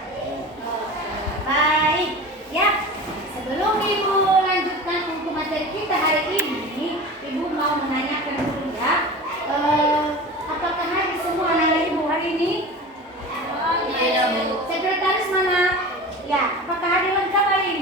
Baik, ya. Sebelum Ibu lanjutkan untuk materi kita hari ini, Ibu mau menanyakan dulu ya. Apakah hadir semua anak-anak Ibu hari ini? Tidak, Bu. Sekretaris mana? Ya, apakah hadir lengkap hari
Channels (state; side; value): normal; both; correlation 0.34